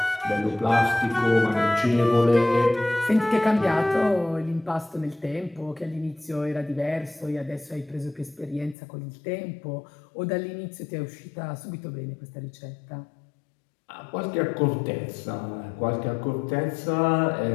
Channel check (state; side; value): drops out; right; at 8.8 s